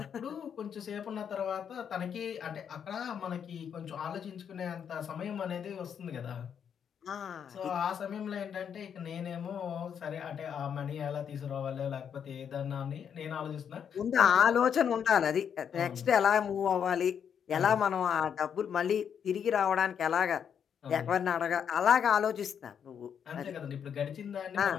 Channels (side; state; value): right; quieter; 7.9 dB